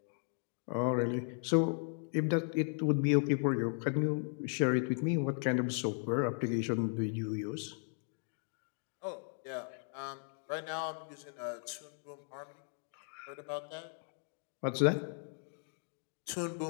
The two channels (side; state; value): right; silent; 53 dB below the other